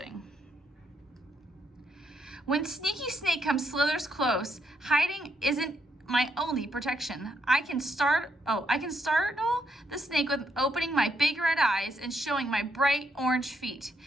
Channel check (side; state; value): both; normal; correlation 0.76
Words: When Sneaky Snake slithers close, hiding isn't my only protection. I can startle the snake with opening my big red eyes and showing my bright orange feet.